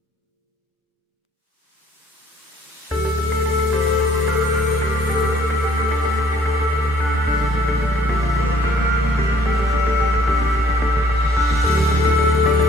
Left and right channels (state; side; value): normal; both; correlation 0.59